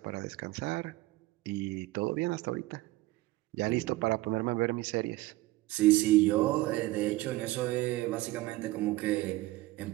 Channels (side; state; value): left; quieter; 18.6 dB